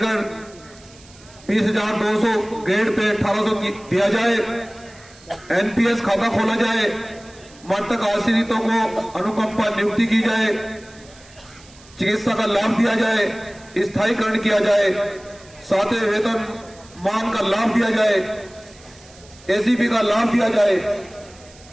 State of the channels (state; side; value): noise; right; hiss, 24 dB below the sound